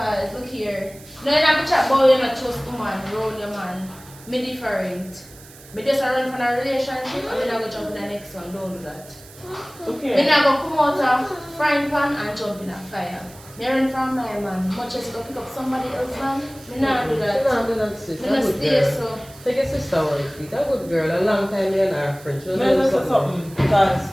look here. No, you don't have to chat about you not trust woman, round your man. Me different. Me just run from a relationship and me not go jump in the next one. Don't do that. Okay. Me not go come out of frying pan and jump in a fire. Me run from my man. Much as you go pick up somebody else's man, me not do that. You don't do that, sis. Me I'm not good stay girl. so. Take your sister out of it. A good girl, a long time me and her friend. She I doesn't just know say something because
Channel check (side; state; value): right; noise; hiss, 21 dB below the sound